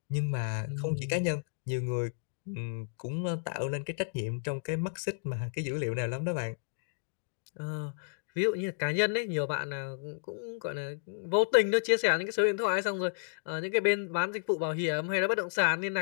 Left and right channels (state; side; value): silent; right; digital silence